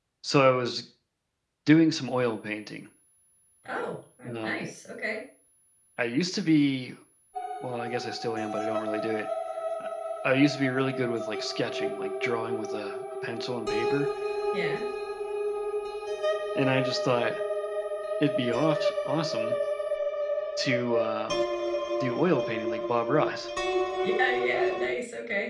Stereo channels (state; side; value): identical; both; correlation 1.00